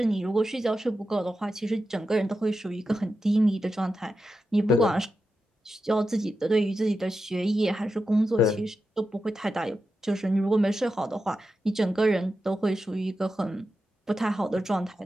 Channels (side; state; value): both; normal; correlation 0.90